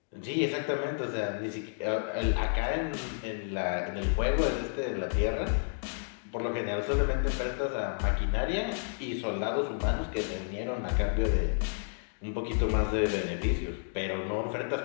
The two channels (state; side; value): silent; right; digital silence